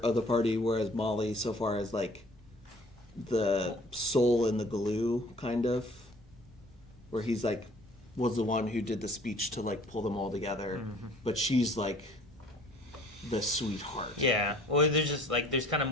of the party, whereas Molly, so far as like the soul in the glue, kind of, where he's like was the one who did the speech to like pull them all together, but she's like the sweetheart. Yeah. Well, there's just like there's kind of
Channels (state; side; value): normal; both; correlation 0.53